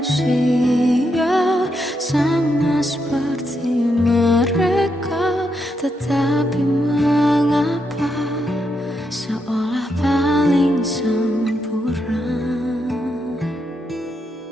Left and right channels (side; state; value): both; normal; correlation 0.81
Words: sama seperti mereka? Tetapi mengapa seolah paling sempurna?